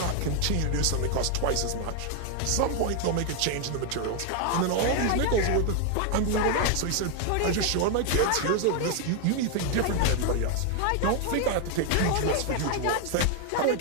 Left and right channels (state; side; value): different; both; correlation 0.00